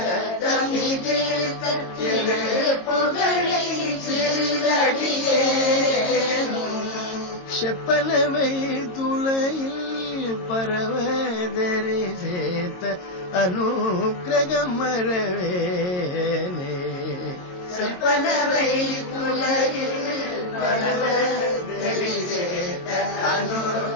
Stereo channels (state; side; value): late; right; 22 ms